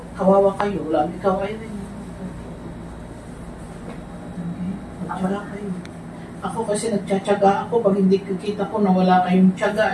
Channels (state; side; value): identical; both; correlation 1.00